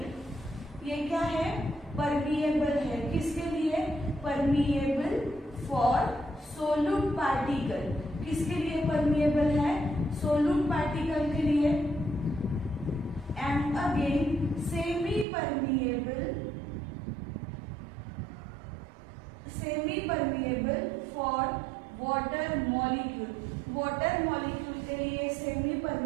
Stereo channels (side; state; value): left; drops out; at 15.2 s